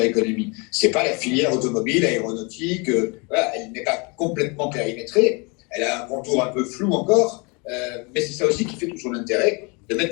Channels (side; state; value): right; quieter; 30.3 dB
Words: Economy. C'est pas la filière automobile, aéronautique, voilà, elle n'est pas complètement périmétrée, elle a un contour un peu flou encore, mais c'est ça aussi qui fait tout son intérêt, de mettre